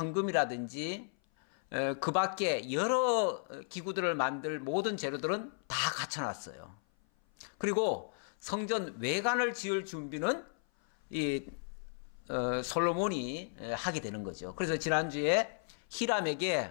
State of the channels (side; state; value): right; silent; 55 dB below the other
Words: 그 밖에 여러 기구들을 만들 모든 재료들은 다 갖춰놨어요. 그리고 성전 외관을 지을 준비는 이 솔로몬이 하게 되는 거죠. 그래서 지난주에